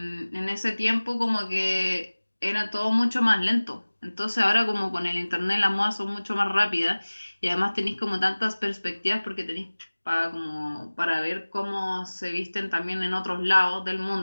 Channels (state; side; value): inverted; both; correlation -1.00